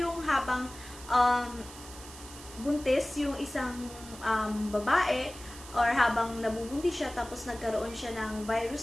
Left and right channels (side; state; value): right; noise; hiss, 16 dB below the sound